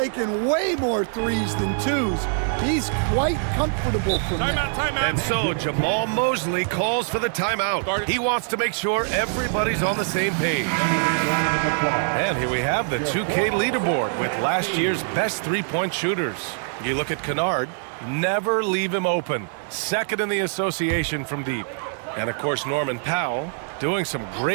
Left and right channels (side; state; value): left; silent; 62 dB below the other